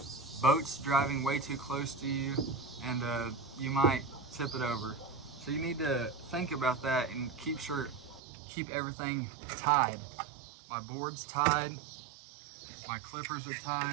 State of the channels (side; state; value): left; drops out; at 8.2 s